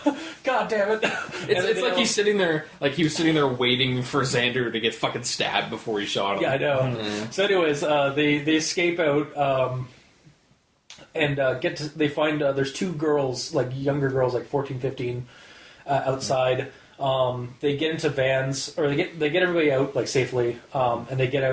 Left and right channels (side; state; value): both; identical; correlation 1.00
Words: God damn it. It's like he's sitting there, like he was sitting there waiting for Xander to get fucking stabbed before he shot him. Yeah, I know. Mm-hmm. So anyways, they escape out and they find there's two girls, like younger girls, like 14, 15, outside. They get into vans, or they get everybody out like safely, and they get